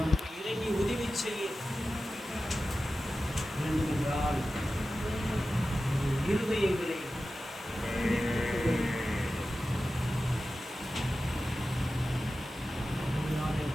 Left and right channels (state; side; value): normal; both; correlation 0.94